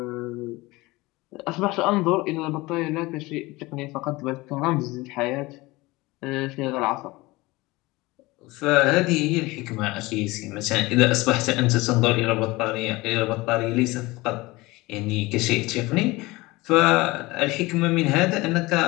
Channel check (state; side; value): quieter; right; 21.5 dB